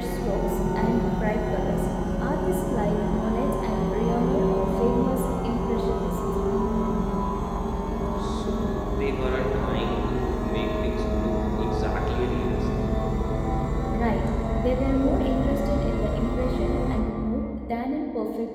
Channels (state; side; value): identical; both; correlation 1.00